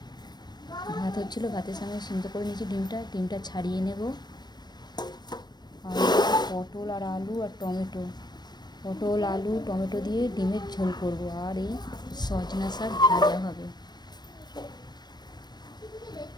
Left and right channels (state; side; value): late; right; 0.20 ms